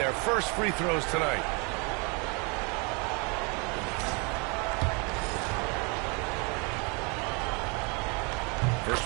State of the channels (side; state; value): left; quieter; 31.9 dB